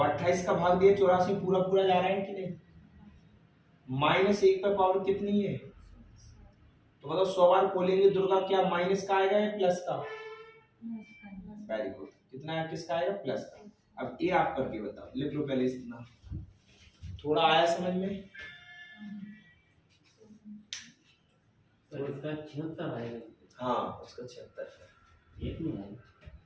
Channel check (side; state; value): both; identical; correlation 1.00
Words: 28 का भाग दिया 84 पूरा पूरा जा रहा है कि नहीं, -1 पे पावर कितनी है, तो बताओ 100 बार खोलेंगे दुर्गा, क्या माइनस का आएगा या प्लस का, वेरी गुड, कितना है किसका आएगा, प्लस का। अब ये आप करके बताओ, लिख लो पहले इतना, थोड़ा आया समझ में, तो इसका 76 आएगा, हाँ उसका 76 एक नहीं आएगा,